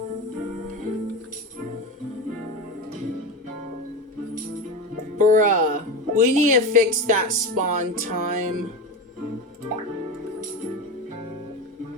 Bruh. We need to fix that spawn time.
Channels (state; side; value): normal; both; correlation 0.23